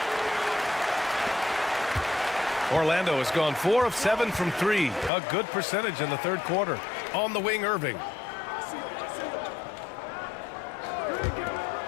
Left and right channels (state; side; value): drops out; right; at 5.1 s